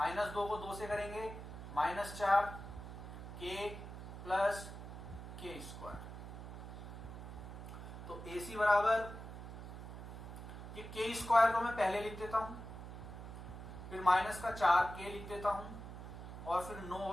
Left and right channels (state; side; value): noise; right; hum, 10 dB below the sound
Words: 2 को 2 से करेंगे माइनस 4 के प्लस के स्क्वायर। तो AC बराबर ये के स्क्वायर को मैं पहले लिख देता हूं, फिर माइनस का 4 के लिख देता हूं और फिर 9